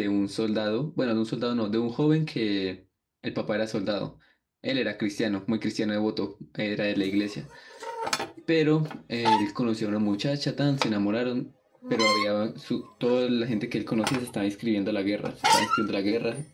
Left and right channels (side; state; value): both; identical; correlation 1.00